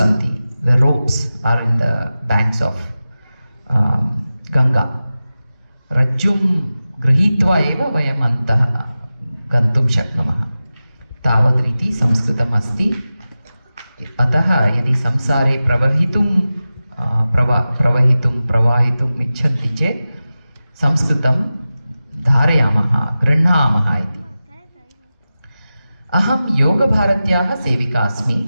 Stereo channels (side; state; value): both; inverted; correlation -0.95